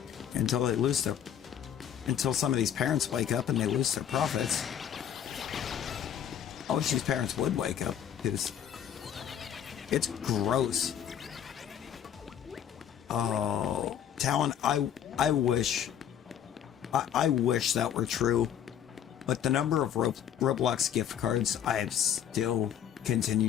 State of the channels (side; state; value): right; quieter; 9.4 dB